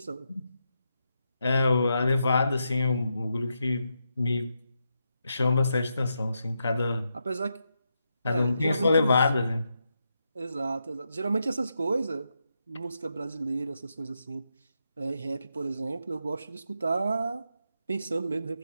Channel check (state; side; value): inverted; both; correlation -0.84